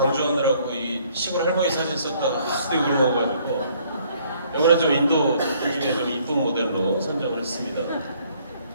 이 시골 할머니 사진 썼다가 하도 욕을 먹어가지고 이번에 좀 인도 중에 좀 이쁜 모델로 선정을 했습니다.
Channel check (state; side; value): inverted; both; correlation -0.63